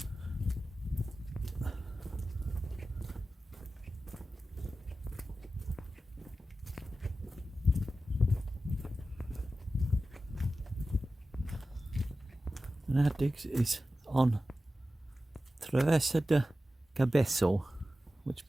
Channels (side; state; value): both; normal; correlation 0.94